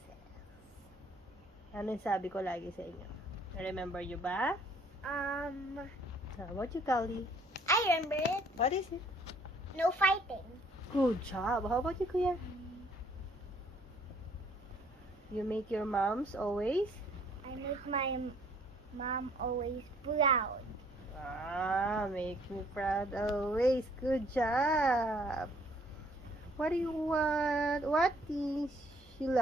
says? Ano yung sabi ko lagi sa inyo? Remember you ba? How about you, Kali? I remember it. What is it? No fighting. Good job. How about you, Kuya? You make your moms always? I make my mom always proud. Make me proud always. Good job. What do you want? What things you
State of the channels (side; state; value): both; normal; correlation 0.61